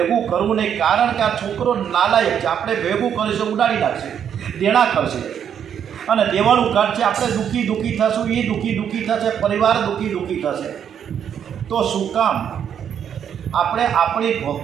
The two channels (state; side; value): quieter; left; 8.6 dB